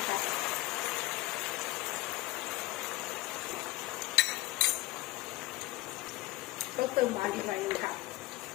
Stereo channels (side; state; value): right; quieter; 19.1 dB